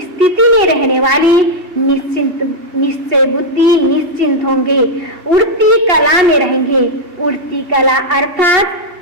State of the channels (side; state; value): left; late; 2.7 ms